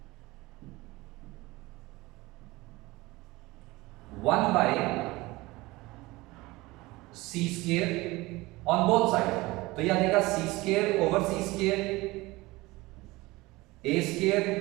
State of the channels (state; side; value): quieter; left; 21.0 dB